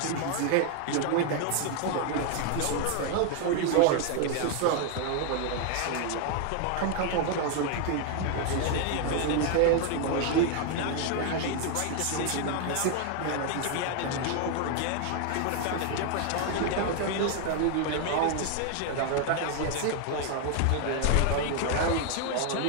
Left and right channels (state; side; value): different; both; correlation 0.00